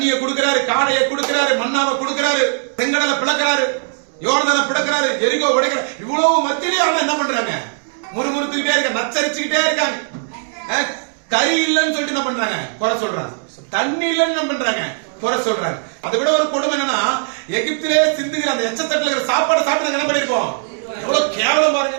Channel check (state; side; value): silent; left; 62 dB below the other